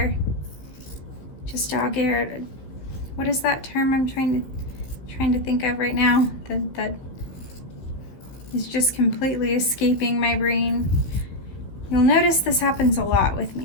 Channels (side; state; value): right; late; 15 ms